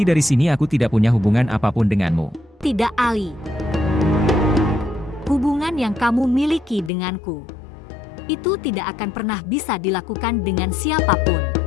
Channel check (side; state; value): right; drops out; at 6.9 s